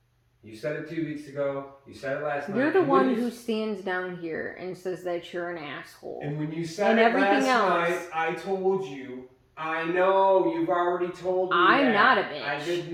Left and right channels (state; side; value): identical; both; correlation 1.00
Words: You said it 2 weeks ago. You said it last night. You're the one who stands down here and says that you're an asshole. And when you said it last night, I told you, I know you've already told me I'm not a bitch. I've